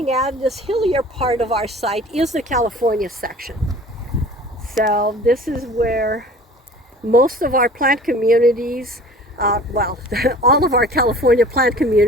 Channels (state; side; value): normal; both; correlation 0.45